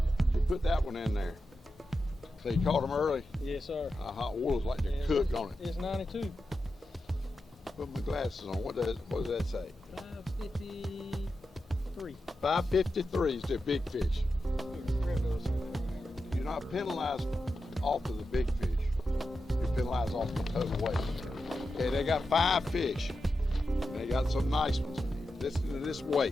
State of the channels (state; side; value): normal; both; correlation 0.90